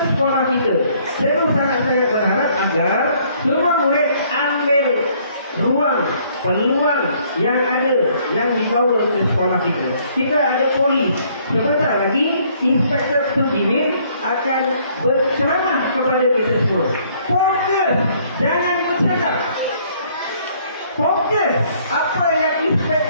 kita. Saya sangat-sangat berharap agar semua murid ambil ruang, peluang yang ada yang dibawa ke sekolah kita. Kita ada polis. Sebentar lagi Inspektor Sudimin akan berceramah kepada kita semua. Fokus, jangan bercakap. Fokus apa yang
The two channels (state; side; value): inverted; both; correlation -0.63